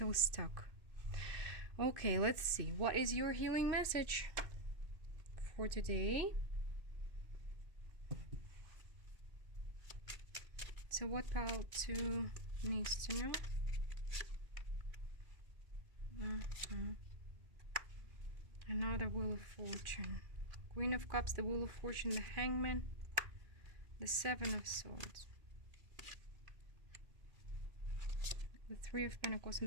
stuck. Okay, let's see. What is your healing message for today? So what pile 2 needs to know? Another Wheel of Fortune. Queen of Cups, the Wheel of Fortune, the Hangman, the 7 of Swords, the 3 of Pentacles,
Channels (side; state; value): left; late; 2.6 ms